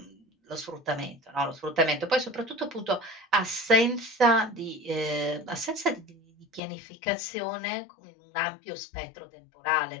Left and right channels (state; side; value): drops out; right; at 6.6 s